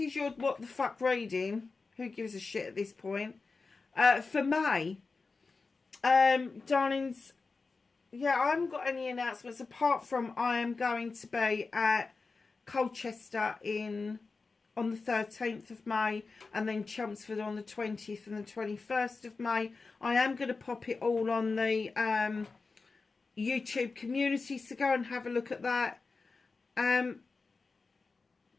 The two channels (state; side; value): quieter; right; 4.2 dB